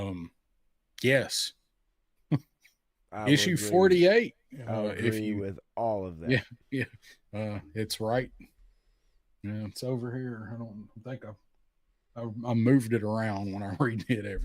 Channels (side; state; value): both; identical; correlation 1.00